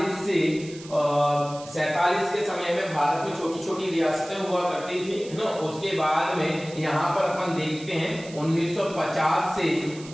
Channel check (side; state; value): right; noise; hiss, 18 dB below the sound